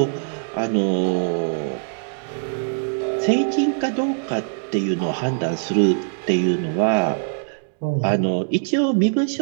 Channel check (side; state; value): left; silent; digital silence